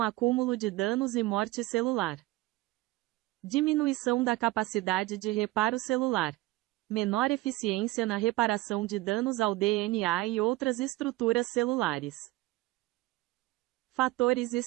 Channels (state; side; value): quieter; left; 19.1 dB